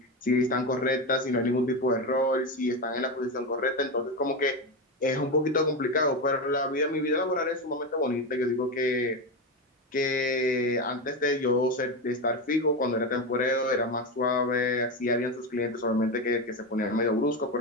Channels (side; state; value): both; normal; correlation 0.16